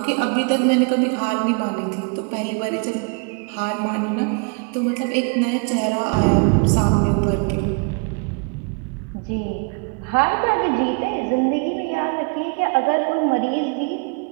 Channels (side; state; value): left; quieter; 35.4 dB